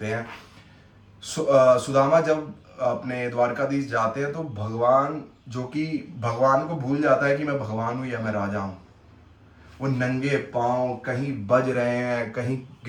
हैं। सुदामा जब अपने द्वारकाधीश जाते हैं तो भगवान, जो कि भगवान को भूल जाता है कि मैं भगवान हूँ या मैं राजा हूँ, वो नंगे पांव कहीं बज रहे हैं, कहीं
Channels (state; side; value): identical; both; correlation 1.00